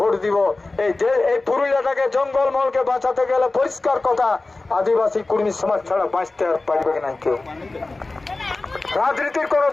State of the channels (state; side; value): quieter; right; 3.3 dB